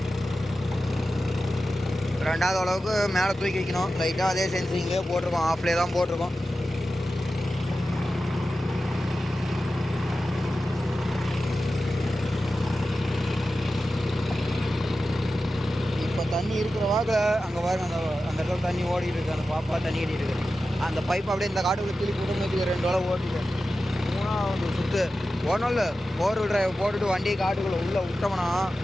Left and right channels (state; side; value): normal; both; correlation 0.93